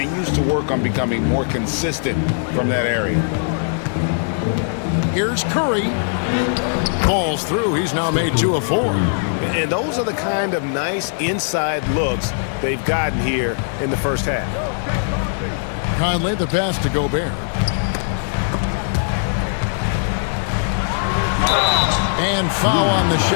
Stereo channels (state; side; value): silent; right; 62 dB below the other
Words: to work on becoming more consistent from that area. Here's Curry. Falls through. He's now made 2 of 4. And those are the kind of nice inside looks they've gotten here in the first half. Conley, the pass to Gobert. And foul on the